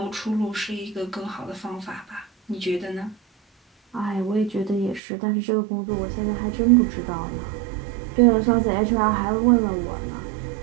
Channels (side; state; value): left; drops out; at 5.0 s